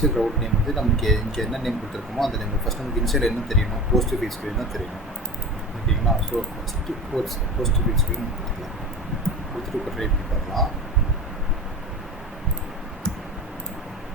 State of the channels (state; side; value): normal; both; correlation 0.32